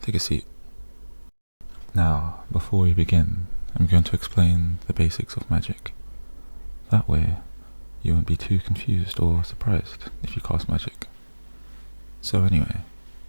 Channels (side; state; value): both; inverted; correlation -1.00